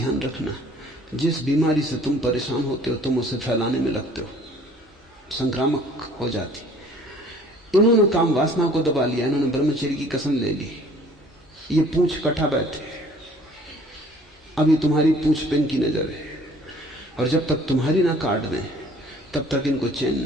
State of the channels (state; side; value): normal; both; correlation 0.54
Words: रखना, जिस बीमारी से तुम परेशान होते हो तुम उसे फैलाने में लगते हो, संक्रामक हो जाती। इन्होंने काम वासना को दबा लिया, इन्होंने ब्रह्मचर्य की कसम ले ली, ये पूंछ कटा बैठे। अभी तुम्हारी पूंछ पे इनकी नजर है, और जब तक तुम्हारी ना काट दें तब तक इनको चैन